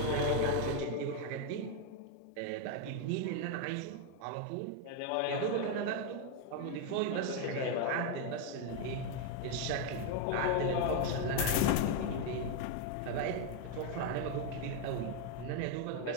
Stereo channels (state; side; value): different; both; correlation 0.01